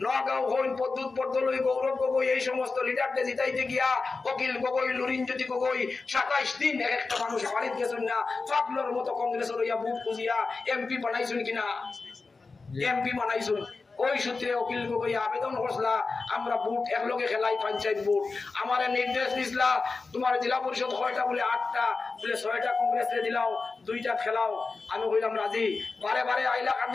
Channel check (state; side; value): quieter; right; 4.1 dB